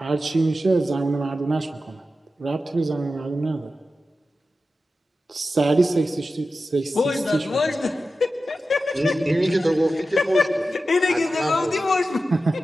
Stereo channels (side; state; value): both; normal; correlation 0.92